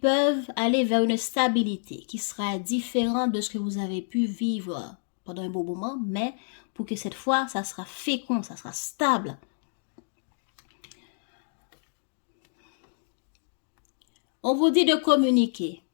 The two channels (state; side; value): silent; right; digital silence